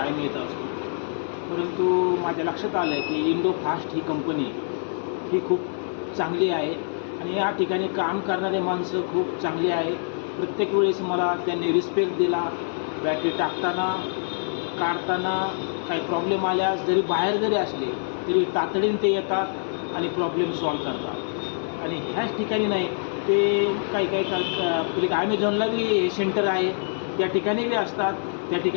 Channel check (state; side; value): silent; right; 62 dB below the other